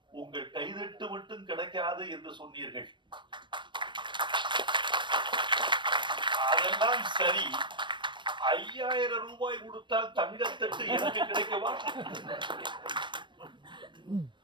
உங்கள் கைதட்டு மட்டும் கிடைக்காது என்று சொன்னீர்கள். அதெல்லாம் சரி, 5000 ரூபாய் கொடுத்தால் தங்கத்தட்டு எனக்கு கிடைக்கவா?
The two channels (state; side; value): late; left; 0.23 ms